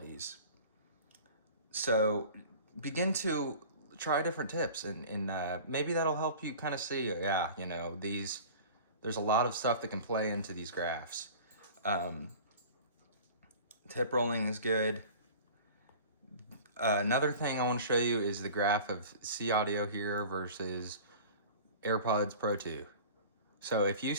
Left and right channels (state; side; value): inverted; both; correlation -0.40